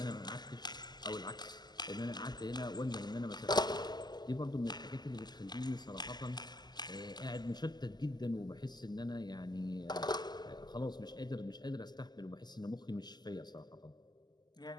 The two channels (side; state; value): right; late; 0.21 ms